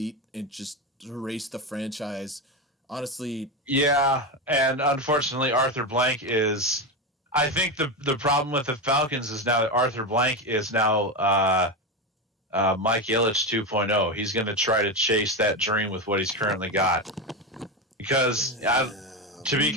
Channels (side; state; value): both; normal; correlation 0.15